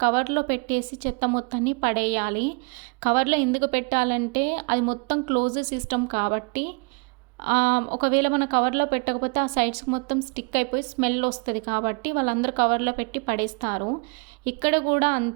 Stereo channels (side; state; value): left; quieter; 34.0 dB